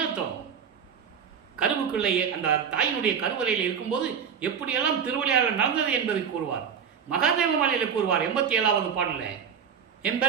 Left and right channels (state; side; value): quieter; left; 7.4 dB